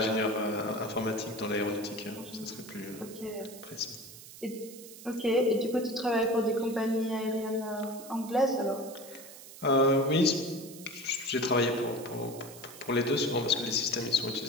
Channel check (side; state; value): right; noise; hiss, 16 dB below the sound